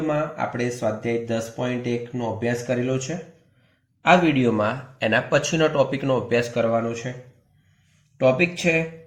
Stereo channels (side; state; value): both; identical; correlation 1.00